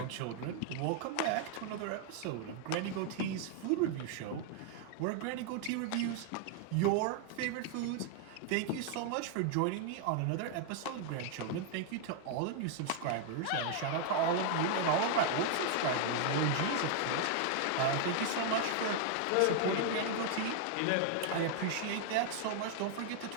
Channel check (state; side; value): different; both; correlation 0.00